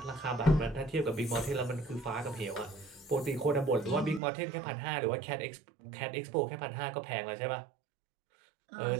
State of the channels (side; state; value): left; drops out; at 4.2 s